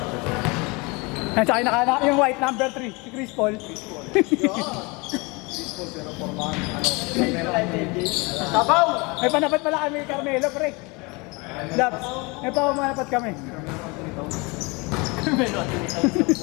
Yan, tsaka yung white, number 3, si Chris Paul. Sabaw! May panapat pala kami, Carmelo, pre. Labs, may pamanapat kami.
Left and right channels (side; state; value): right; quieter; 27.4 dB